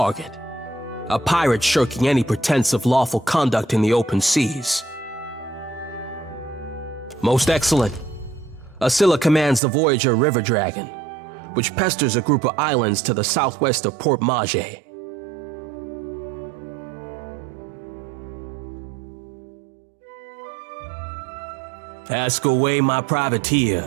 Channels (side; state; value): left; drops out; at 9.6 s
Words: A pirate shirking any pretense of lawful conduct in the open seas. Most excellent. Scylla commands the Voyager River Dragon, which pesters a group of islands to the southwest of Port Mage. Ask away, my privateer.